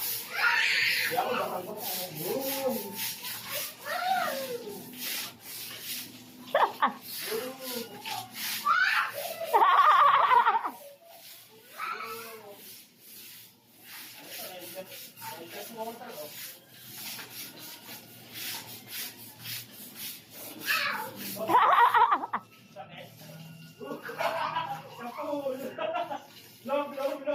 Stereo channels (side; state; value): both; identical; correlation 1.00